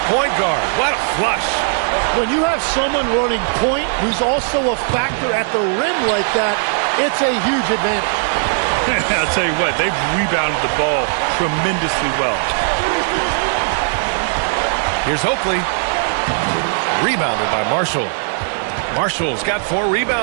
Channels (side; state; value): left; silent; digital silence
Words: point guard. What a flush. When you have someone running point who's also a factor at the rim like that, it's a huge advantage. I'll tell you what, they've rebounded the ball tremendously well. Here's Oakley. Rebounded by Marshall. Marshall's got 4